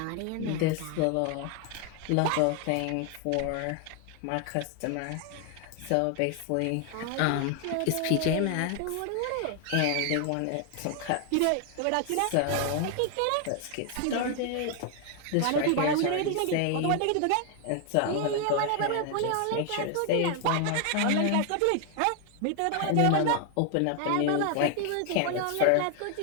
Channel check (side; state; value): both; different; correlation 0.00